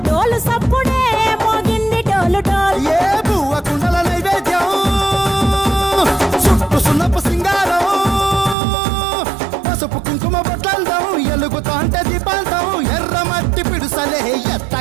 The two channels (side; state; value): left; drops out; at 8.6 s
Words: డోలు సప్పుడే మోగింది డోలు డోలు ఏ బువ్వ కుండల నైవేద్యం చుట్టు సున్నపు సింగారం పసుపు కుంకుమ బొట్లందం ఎలుగుతాంటే దీపాంతం ఎర్ర మట్టి పిడుసలే